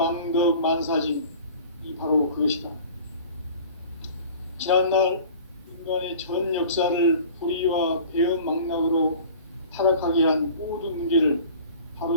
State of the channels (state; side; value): inverted; both; correlation -0.43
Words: 만사짐이 바로 그것이다. 지난날 인간의 전 역사를 불의와 배움 망락으로 타락하게 한 모든 문제를